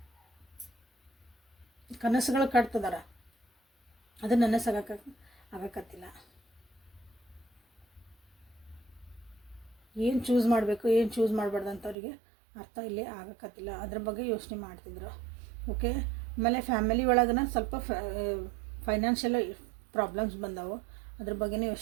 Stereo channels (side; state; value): left; drops out; at 12.0 s